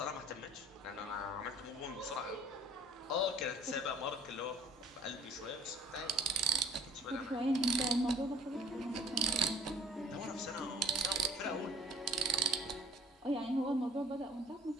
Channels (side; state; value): both; normal; correlation 0.51